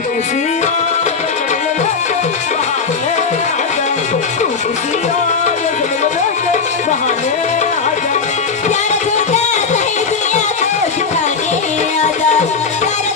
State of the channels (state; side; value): quieter; right; 5.1 dB